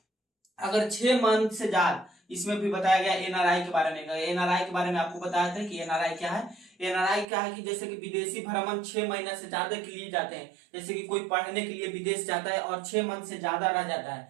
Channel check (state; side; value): drops out; left; at 7.2 s